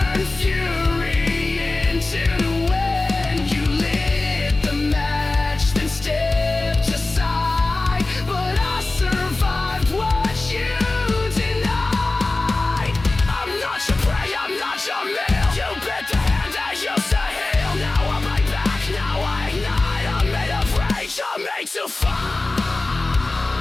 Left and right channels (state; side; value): quieter; right; 3.1 dB